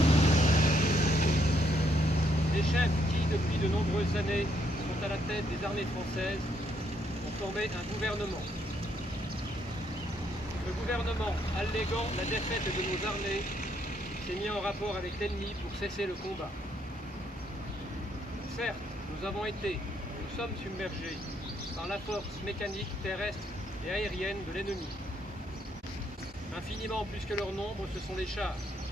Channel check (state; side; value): normal; both; correlation 0.73